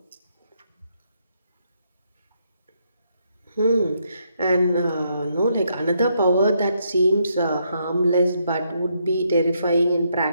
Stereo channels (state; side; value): inverted; both; correlation -0.76